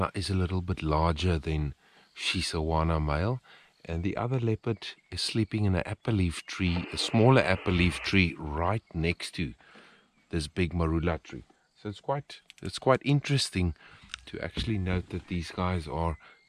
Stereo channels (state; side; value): identical; both; correlation 1.00